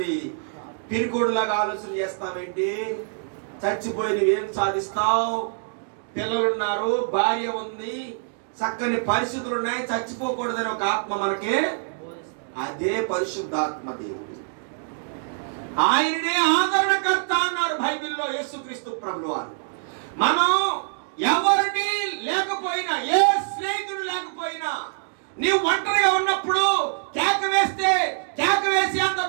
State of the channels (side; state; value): left; silent; digital silence